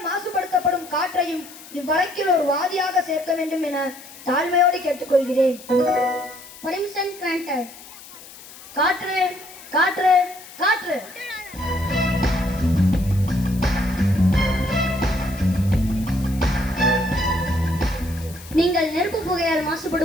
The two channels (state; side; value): noise; left; hiss, 18 dB below the sound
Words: மாசுபடுத்தப்படும் காற்றையும் இவ்வழக்கில் ஒரு வாதியாக சேர்க்க வேண்டும் என தாழ்மையோடு கேட்டுக்கொள்கிறேன். Permission granted. காற்று காற்று காற்று. நீங்கள் நெருப்பு புகையால்